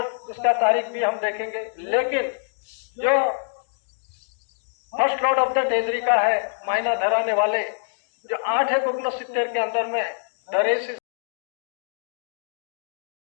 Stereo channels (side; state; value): right; silent; digital silence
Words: उसका तारीख भी हम देखेंगे। लेकिन जो first lord of the treasury का है, मायना धराने वाले जो 8/69 के अंदर में दरेश